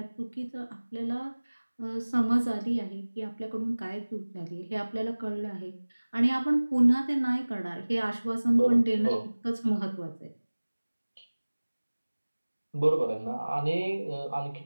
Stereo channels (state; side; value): inverted; both; correlation -1.00